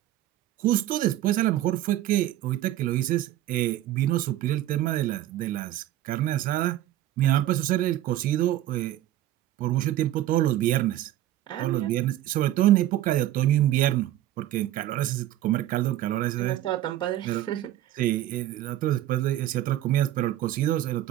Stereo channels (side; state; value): left; quieter; 13.5 dB